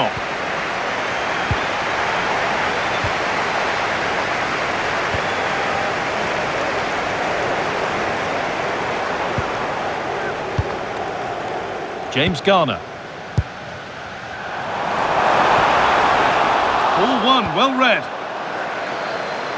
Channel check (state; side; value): identical; both; correlation 1.00